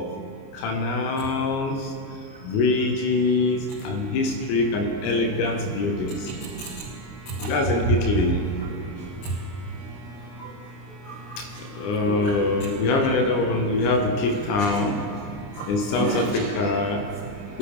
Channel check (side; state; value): right; late; 30 ms